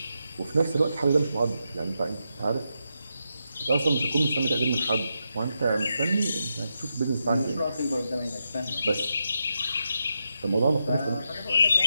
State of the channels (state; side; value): inverted; both; correlation -0.85